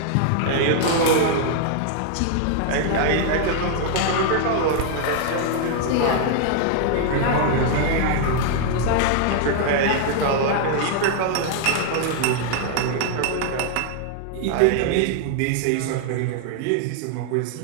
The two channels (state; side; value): different; both; correlation 0.00